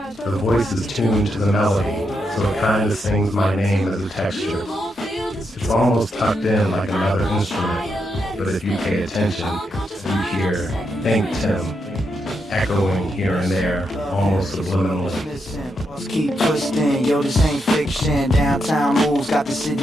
voice is tuned to the melody, so it kind of sings my name as a texture. It's almost tucked in like another instrument, but if you pay attention, you hear ThinkTimm echoing here and there, almost subliminally. Let's keep twisting, yo, this ain't fiction. Downtown moves got the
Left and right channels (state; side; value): normal; both; correlation 0.82